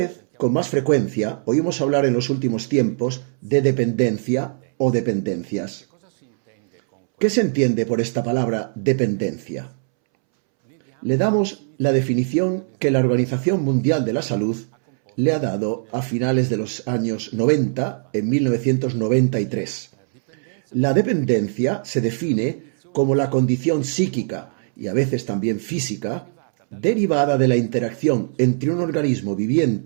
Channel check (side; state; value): left; silent; 65 dB below the other